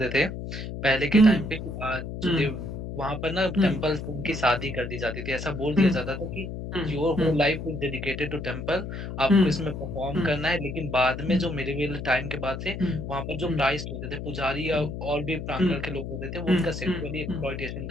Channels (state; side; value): noise; left; hum, 7 dB below the sound